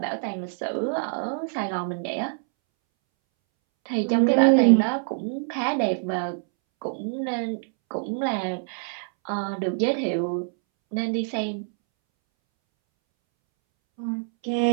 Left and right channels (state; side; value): silent; left; 62 dB below the other